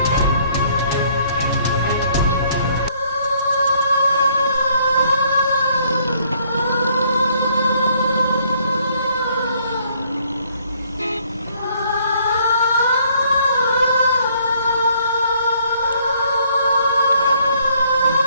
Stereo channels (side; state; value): both; inverted; correlation -0.65